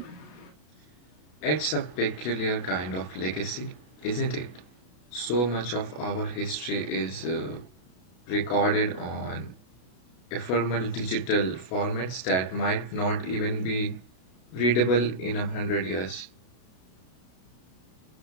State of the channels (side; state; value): right; late; 33 ms